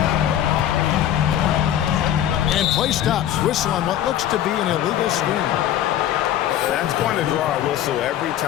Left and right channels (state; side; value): quieter; right; 11.5 dB